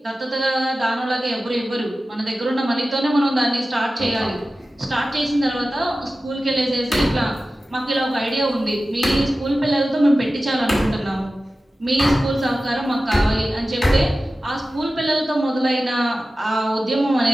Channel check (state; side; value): normal; both; correlation 0.95